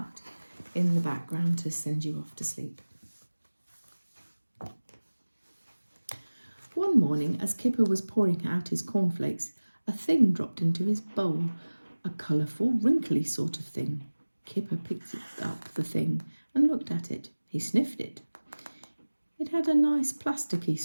in the background to send you off to sleep. One morning, as Kipper was pouring out his cornflakes, a thing dropped into his bowl, a colourful, wrinkly sort of thing. Kipper picked up the thing and looked at it. He sniffed it. It had a nice plasticky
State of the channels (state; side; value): inverted; both; correlation -1.00